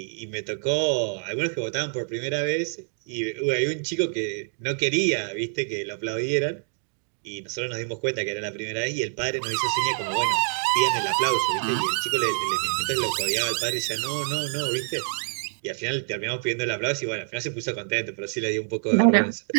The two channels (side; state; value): left; silent; digital silence